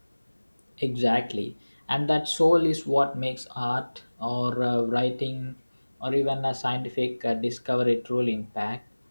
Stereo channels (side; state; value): both; inverted; correlation -1.00